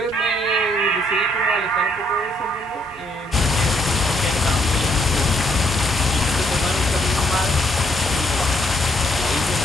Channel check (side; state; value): both; normal; correlation 0.70